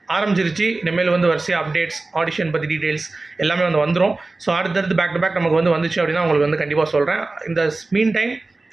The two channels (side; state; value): left; quieter; 3.3 dB